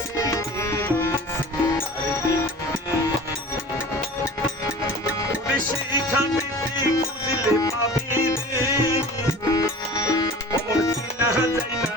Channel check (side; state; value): both; normal; correlation 0.40